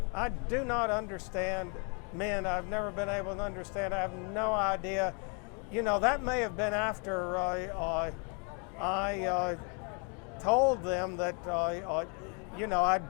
do not understand men. I've never been able to understand. I have no idea. That may have been after I told them that, I'd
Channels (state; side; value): quieter; right; 36.7 dB